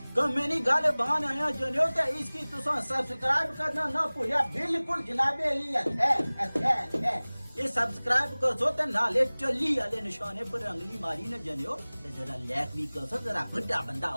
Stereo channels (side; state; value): both; inverted; correlation -1.00